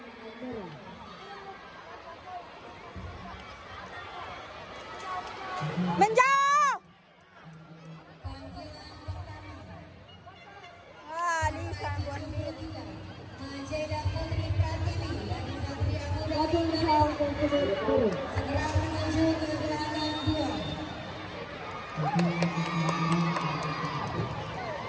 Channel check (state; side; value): identical; both; correlation 1.00